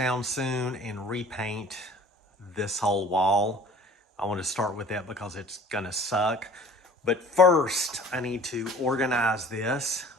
soon and repaint this whole wall. I want to start with that because it's gonna suck. But first, I need to organize this.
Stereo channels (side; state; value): both; normal; correlation 0.47